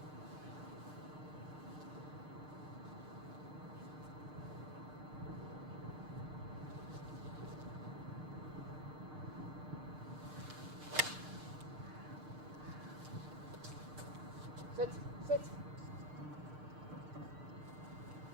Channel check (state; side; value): late; left; 6.6 ms